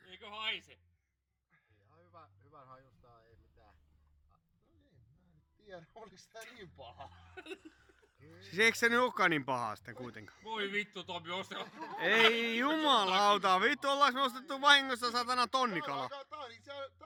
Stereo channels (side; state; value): both; identical; correlation 1.00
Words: Eikö haise? Ihan hyvän hajusta, ei mitään. No niin, mä en tiedä, oliks tää niin paha. Siis eikö se nyt olekaan niin pahaa sitten kuitenkaan? Voi vittu Tomi, Ei jumalauta, vittu ollaanko me ostettu vahingossa satana tonnikala?